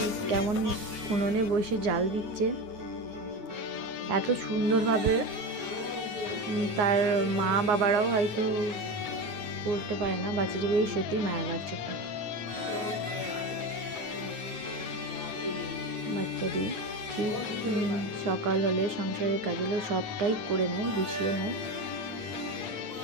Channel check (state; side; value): late; left; 9.4 ms